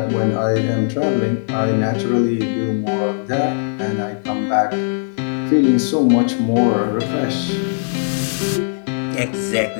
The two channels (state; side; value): silent; right; digital silence